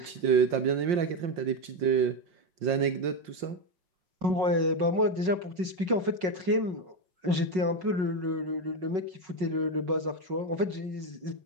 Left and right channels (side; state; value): left; late; 5.4 ms